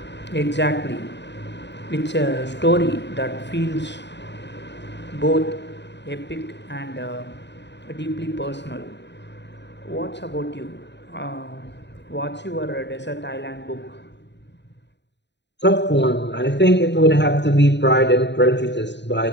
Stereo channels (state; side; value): late; right; 0.51 ms